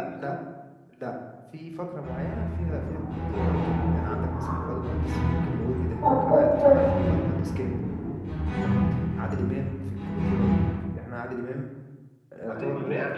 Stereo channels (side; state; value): both; identical; correlation 1.00